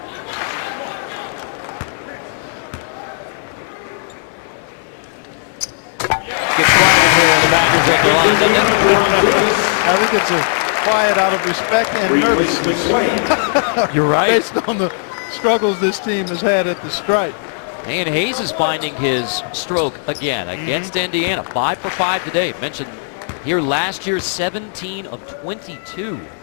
Gets quiet in here when the Badgers are at their line, doesn't it? I think it's a quiet out of respect and nervousness. You're right. Based on the struggles this team has had at the stripe. And Hayes is finding his stroke again against Indiana. 5 for 5 today. Mentioned here last year, 17 of 22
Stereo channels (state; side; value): silent; right; 59 dB below the other